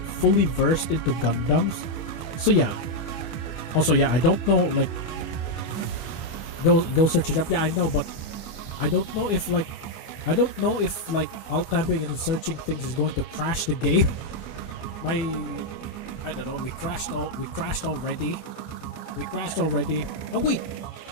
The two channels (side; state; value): right; late; 25 ms